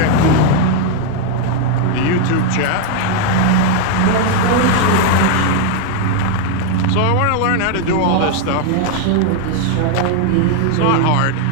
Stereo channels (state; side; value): different; both; correlation 0.00